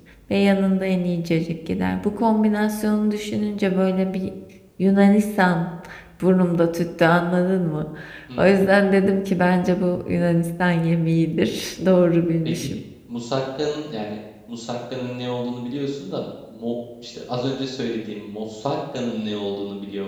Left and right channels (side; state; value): both; identical; correlation 1.00